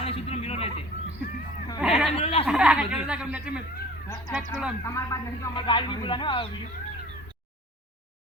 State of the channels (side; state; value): both; normal; correlation 0.45